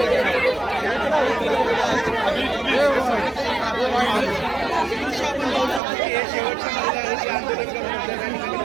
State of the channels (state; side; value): drops out; left; at 5.8 s